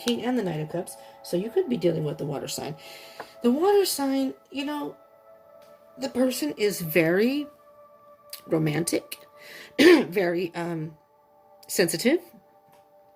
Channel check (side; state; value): both; identical; correlation 1.00